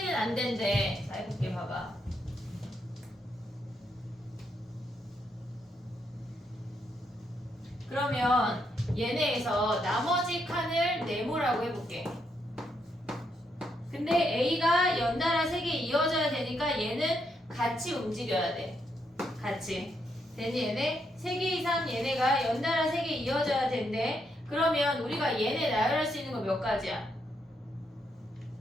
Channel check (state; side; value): normal; both; correlation 0.78